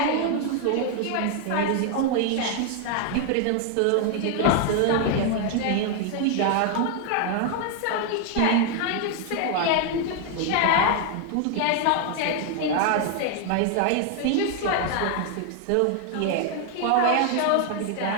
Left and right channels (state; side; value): different; both; correlation 0.01